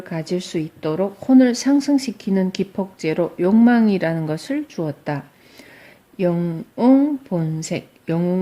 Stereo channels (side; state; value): both; identical; correlation 1.00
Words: 가질 수 있도록 혼을 상승시키는 기폭제로 욕망이라는 것을 주었다. 영웅 본색,